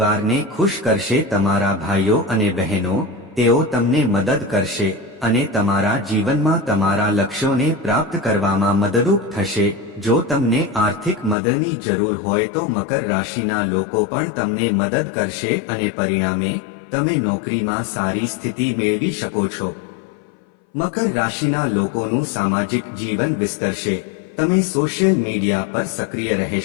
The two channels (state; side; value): drops out; right; at 11.4 s